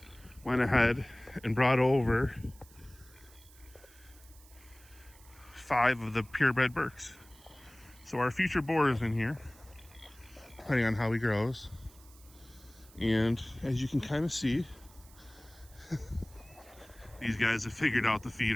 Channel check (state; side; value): noise; right; hiss, 24 dB below the sound